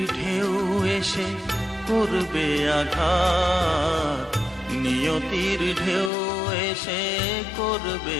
ঢেউ এসে করবে আঘাত, নিয়তির ঢেউ এসে করবে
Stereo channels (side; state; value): right; drops out; at 6.1 s